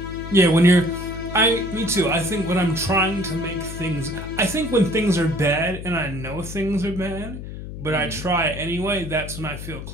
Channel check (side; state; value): left; noise; hum, 10 dB below the sound